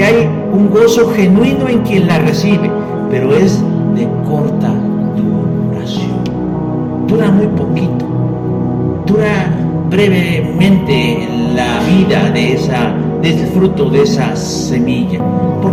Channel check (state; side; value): identical; both; correlation 1.00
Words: hay un gozo genuino en quien la recibe, pero es de corta duración. Dura muy poquito, dura brevemente la vida del fruto de esa semilla.